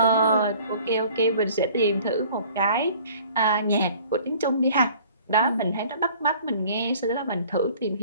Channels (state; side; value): inverted; both; correlation -0.51